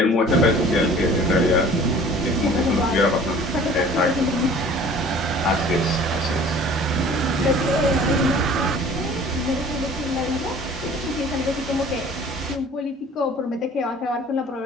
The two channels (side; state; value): both; normal; correlation 0.48